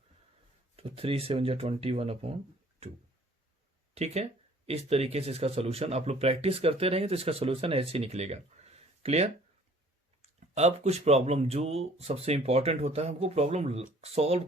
तो 3 7 जा 21 अपॉन 2। ठीक है, इस तरीके से इसका सोल्यूशन आप लोग प्रैक्टिस करते रहेंगे तो इसका सोल्यूशन ऐसे ही निकलेगा। क्लियर। अब कुछ प्रॉब्लम जो सबसे इंपॉर्टेंट होता है, हमको प्रॉब्लम सॉल्व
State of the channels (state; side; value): normal; both; correlation 0.55